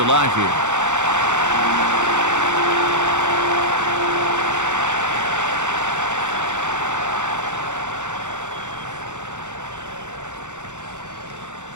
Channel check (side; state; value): left; late; 0.85 ms